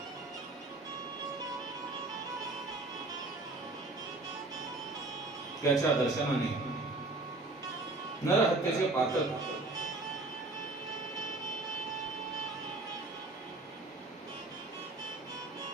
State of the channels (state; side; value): quieter; left; 3.1 dB